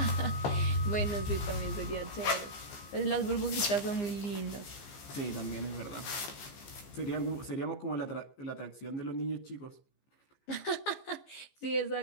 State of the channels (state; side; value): late; right; 15 ms